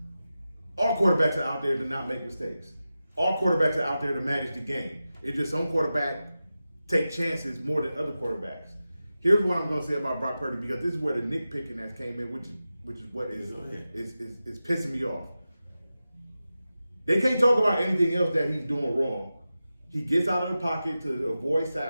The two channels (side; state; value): both; inverted; correlation -0.93